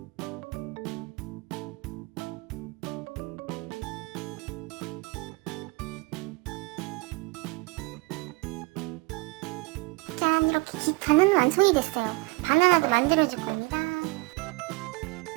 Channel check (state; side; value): quieter; left; 26.6 dB